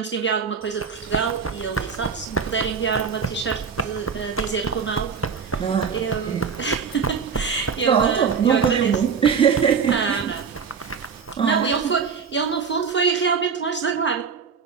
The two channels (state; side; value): quieter; left; 6.1 dB